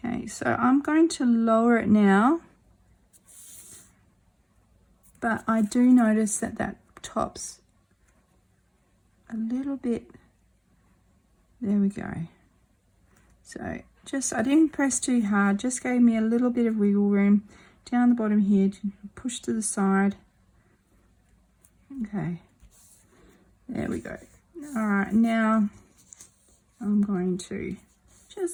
Okay, so I'm going to lower it now, but I do notice that that top's a little bit, there we go. So just, I didn't press too hard, just gave me a little bit of wiggle room down the bottom here to push to the side. Okay, there we go. All right, now I'm going to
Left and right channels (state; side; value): identical; both; correlation 1.00